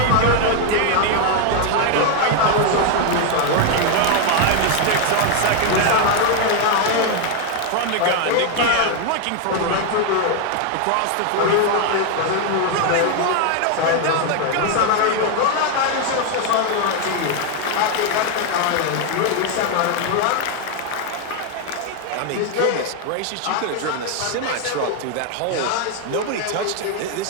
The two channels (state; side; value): different; both; correlation 0.01